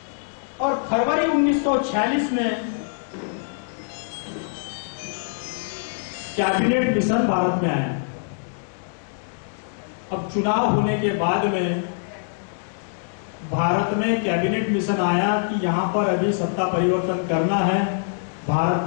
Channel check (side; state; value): right; silent; digital silence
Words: और फरवरी 1946 में कैबिनेट मिशन भारत में आया। अब चुनाव होने के बाद में भारत में कैबिनेट मिशन आया कि यहां पर अभी सत्ता परिवर्तन करना है, भारत